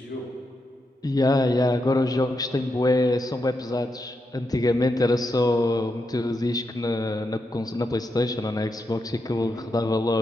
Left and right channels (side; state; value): both; normal; correlation 0.84